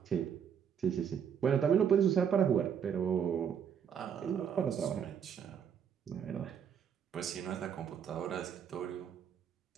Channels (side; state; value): left; quieter; 8.0 dB